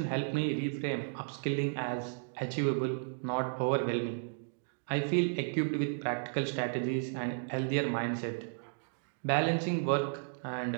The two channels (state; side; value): silent; left; digital silence